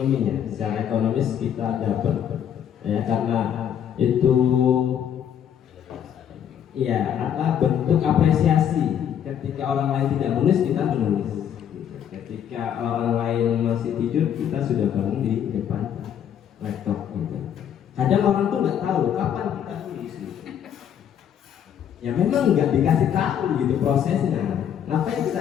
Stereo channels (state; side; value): quieter; right; 9.2 dB